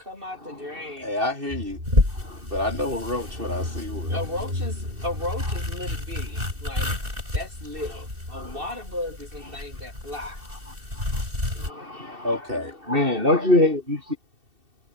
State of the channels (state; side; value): late; left; 2.7 ms